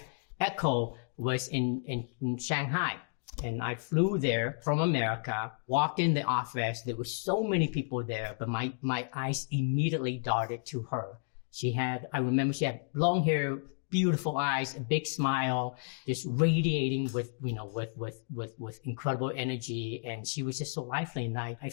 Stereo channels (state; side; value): silent; right; digital silence